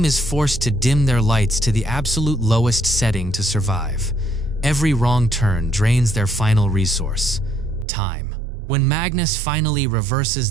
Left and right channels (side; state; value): left; drops out; at 7.9 s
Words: is forced to dim their lights to the absolute lowest setting to survive. Every wrong turn drains their final resource, time. When Magnus finally reverses